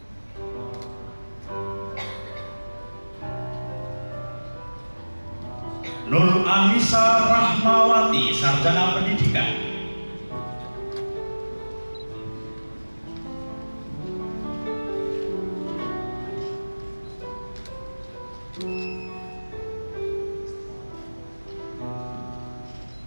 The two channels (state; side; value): inverted; both; correlation -1.00